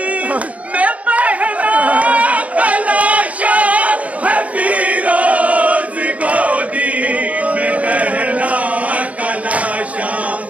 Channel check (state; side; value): late; left; 0.068 ms